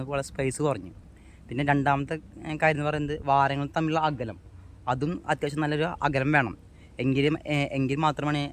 പോലെ സ്പേസ് കുറഞ്ഞു. പിന്നെ രണ്ടാമത്തെ കാര്യം എന്ന് പറയുന്നത്, വാരങ്ങൾ തമ്മിലുള്ള അകലം, അതും അത്യാവശ്യം നല്ലൊരു അകലം വേണം. എങ്കിൽ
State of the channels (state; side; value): identical; both; correlation 1.00